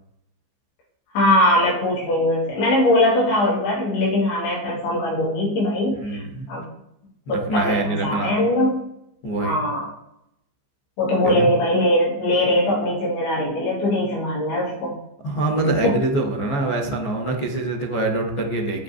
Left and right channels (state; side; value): late; right; 15 ms